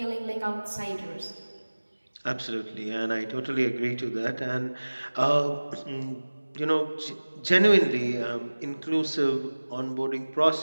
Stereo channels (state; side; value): inverted; both; correlation -1.00